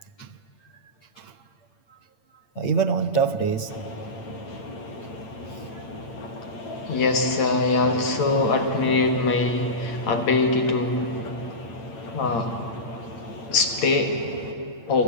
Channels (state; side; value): late; right; 8.8 ms